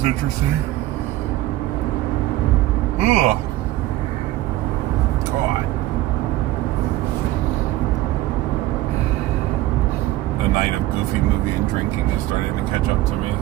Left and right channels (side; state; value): left; quieter; 15.9 dB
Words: interesting. Ugh. God. The night of Goofy movie and drinking is starting to catch up to me.